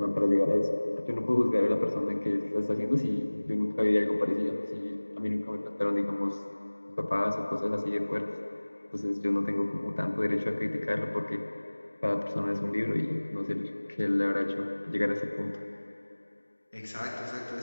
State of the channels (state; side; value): inverted; both; correlation -1.00